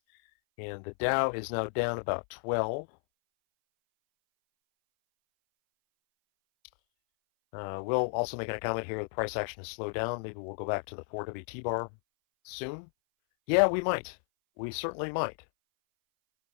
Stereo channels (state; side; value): silent; right; 56 dB below the other